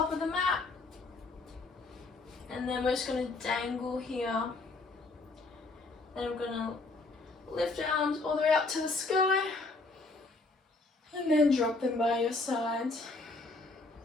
of the mat. And then we're just going to dangle here. Then we're going to lift our arms all the way up to the sky. And then drop them by your sides.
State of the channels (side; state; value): right; quieter; 3.4 dB